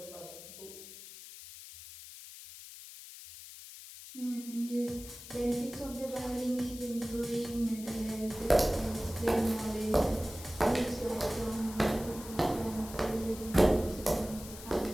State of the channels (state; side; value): noise; left; hiss, 14 dB below the sound